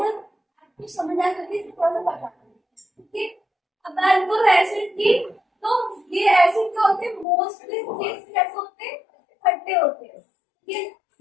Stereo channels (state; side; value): drops out; right; at 7.2 s